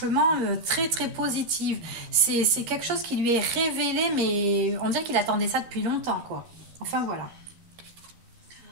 très très positif. C'est quelque chose qui lui est révélé, mais on dirait qu'il attendait ça depuis longtemps, quoi. Enfin, voilà.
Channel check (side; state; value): left; late; 13 ms